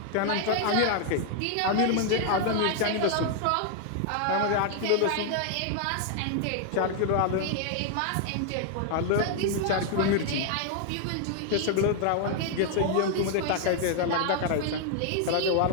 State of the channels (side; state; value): both; different; correlation 0.00